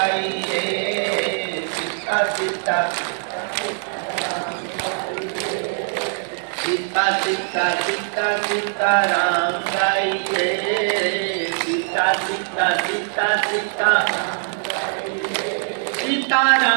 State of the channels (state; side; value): silent; left; 56 dB below the other